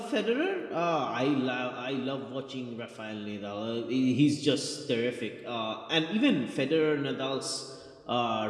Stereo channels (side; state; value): both; identical; correlation 1.00